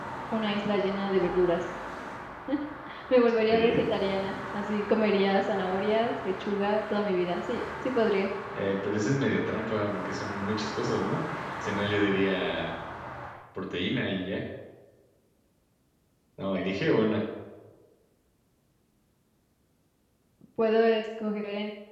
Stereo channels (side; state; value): both; identical; correlation 1.00